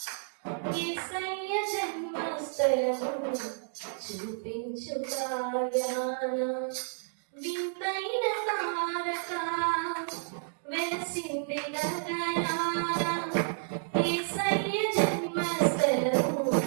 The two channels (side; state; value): left; silent; digital silence